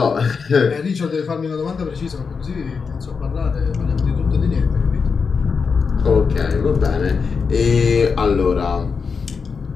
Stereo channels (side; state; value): right; quieter; 5.4 dB